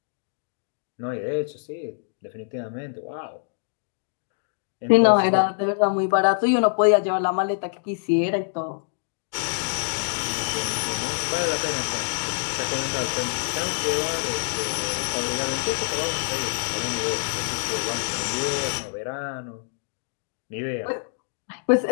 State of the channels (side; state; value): right; silent; digital silence